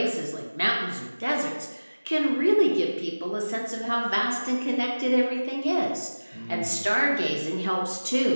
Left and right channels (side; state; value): both; inverted; correlation -1.00